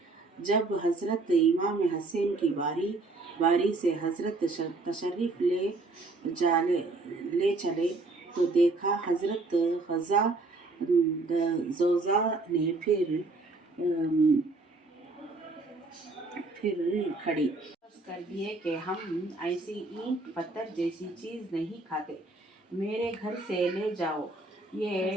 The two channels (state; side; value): quieter; left; 3.3 dB